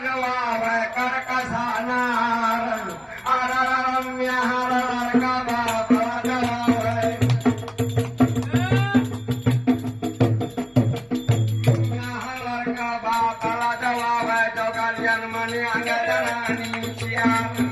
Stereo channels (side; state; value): both; identical; correlation 1.00